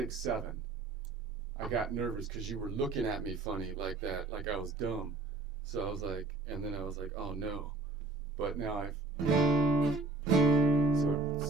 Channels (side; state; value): left; quieter; 3.3 dB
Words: 7. I got nervous because you were looking at me funny like that, like I was dumb. So I was like, and then I was like, oh no. But now so